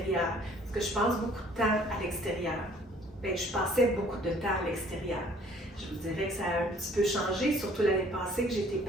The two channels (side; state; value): both; normal; correlation 0.57